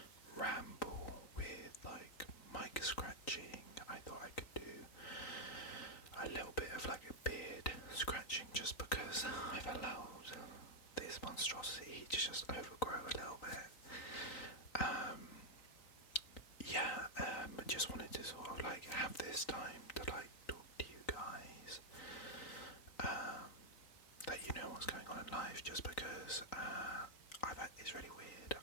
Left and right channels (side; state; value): right; late; 3.9 ms